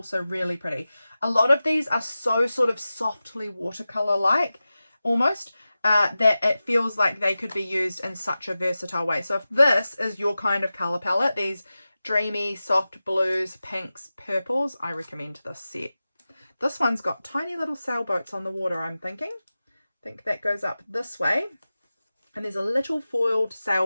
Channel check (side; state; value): both; inverted; correlation -0.95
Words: really pretty. A lot of these are so sort of softly watercolour like almost, that it feels like they could be used in such a versatile way. So if this is your kind of colour palette, these dreamy soft blues, pinks, purples, I recommend this set. This one's got tiny little sailboats on the water, I'm thinking. I think that goes up this way, and there's a little foiled